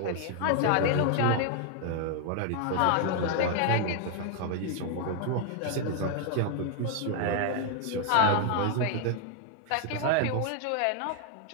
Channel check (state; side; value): different; both; correlation 0.00